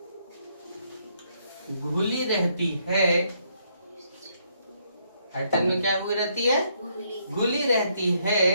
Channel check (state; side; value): inverted; both; correlation -0.72